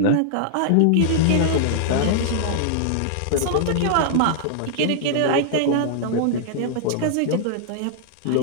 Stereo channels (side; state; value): both; different; correlation -0.01